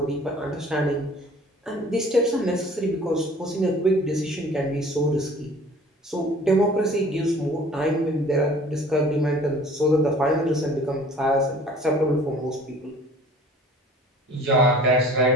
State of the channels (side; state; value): both; normal; correlation 0.49